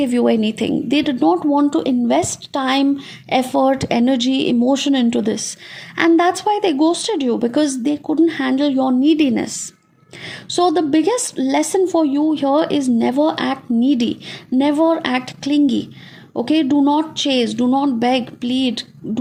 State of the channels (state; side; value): identical; both; correlation 1.00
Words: you anything. They did not want to invest time, effort, energy, emotion into this, and that's why they ghosted you, because they couldn't handle your neediness. So, the biggest lesson for you here is never act needy, never act clingy. Okay, do not chase, do not beg, plead,